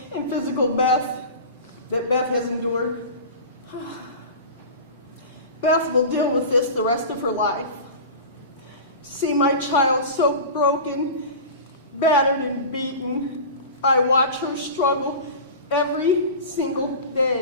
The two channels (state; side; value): inverted; both; correlation -0.33